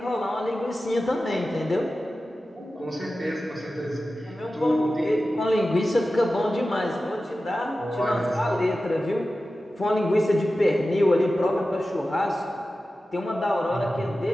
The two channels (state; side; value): normal; both; correlation 0.94